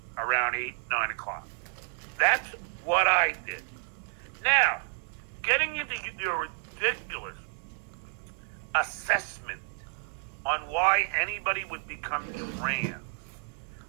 around 8, 9 o'clock. That's what I did. Now, getting into your ridiculous assessment on why anybody would become trans,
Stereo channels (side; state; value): left; silent; 57 dB below the other